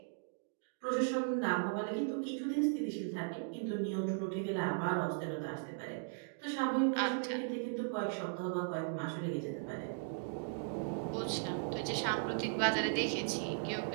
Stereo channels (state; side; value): silent; left; digital silence